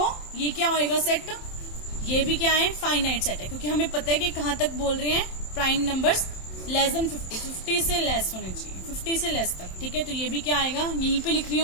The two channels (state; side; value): late; right; 27 ms